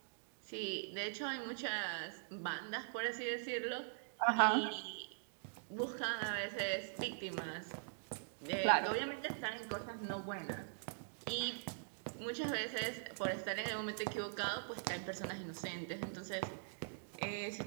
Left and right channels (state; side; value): silent; left; digital silence